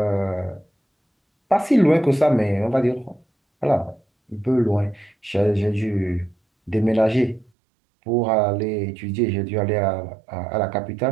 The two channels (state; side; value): drops out; left; at 7.5 s